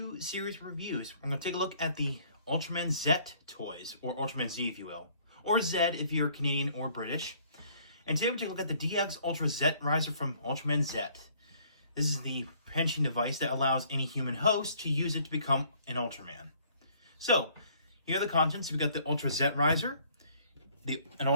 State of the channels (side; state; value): both; inverted; correlation -0.60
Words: series of reviews. I'm going to take a look at the Ultraman Zett toys, or Ultraman Z if you will, or Zed if you're Canadian or British. And today we're going to take a look at the DX Ultra Zett Riser from Ultraman Zett. This is the pension device that allows any human host to use it to become an Ultraman. So, here are the contents. We've got the Ultra Zett Riser, an